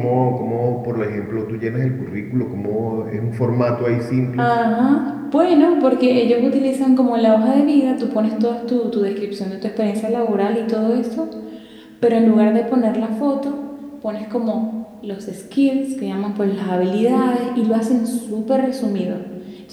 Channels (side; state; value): both; identical; correlation 1.00